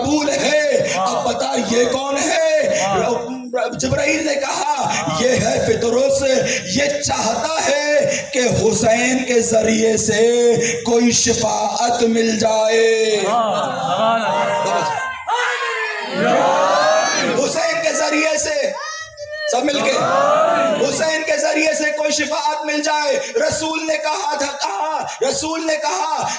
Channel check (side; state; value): both; identical; correlation 1.00